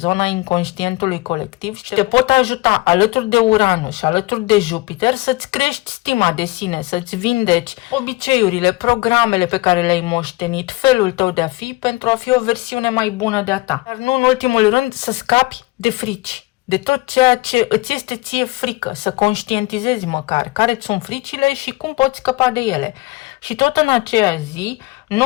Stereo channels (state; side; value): quieter; right; 21.7 dB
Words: inconștientului colectiv și te pot ajuta alături de Uranus și alături de Jupiter să-ți crești stima de sine, să-ți vindeci obiceiurile, programele pe care le-ai moștenit, felul tău de a fi pentru a fi o versiune mai bună de-a ta. Dar nu în ultimul rând să scapi de frici, de tot ceea ce îți este ție frică, să conștientizezi măcar care-ți sunt fricile și cum poți scăpa de ele. Și tot în aceea zi,